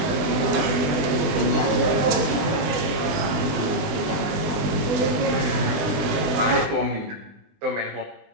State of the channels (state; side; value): late; left; 20 ms